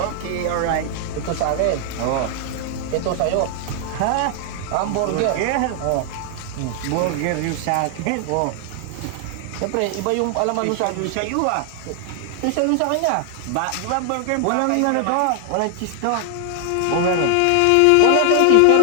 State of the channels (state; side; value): different; both; correlation 0.00